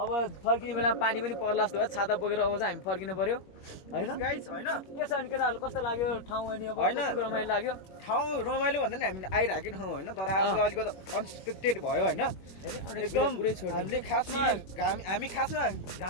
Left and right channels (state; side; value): late; right; 21 ms